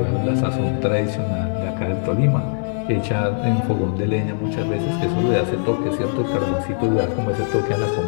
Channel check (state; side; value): silent; right; digital silence